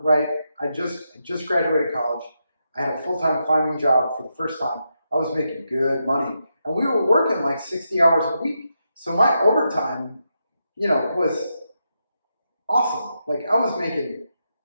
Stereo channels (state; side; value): inverted; both; correlation -0.84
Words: right? I just graduated college. I had a full-time climbing job for the first time. I was making good money, and we were working like 60 hours a week. So my overtime, was awesome. Like I was making,